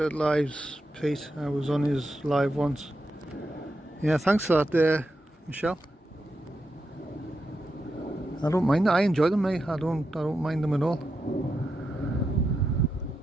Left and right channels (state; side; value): normal; both; correlation 0.87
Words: lives, Pete. I was on his live once. Yeah, thanks for that there, Michelle. I don't mind. I enjoy them, mate. I don't mind them at all.